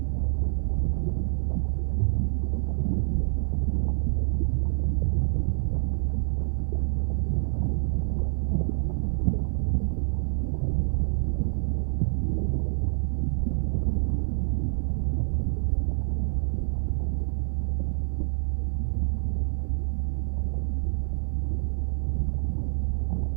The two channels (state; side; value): silent; left; digital silence